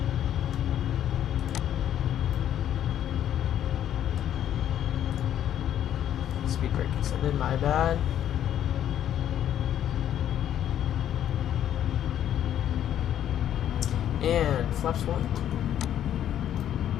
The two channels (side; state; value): right; quieter; 10.7 dB